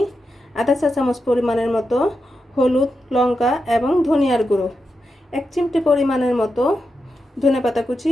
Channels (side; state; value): both; normal; correlation 0.88